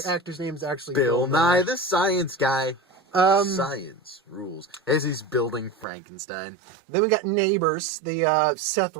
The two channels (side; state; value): left; drops out; at 5.9 s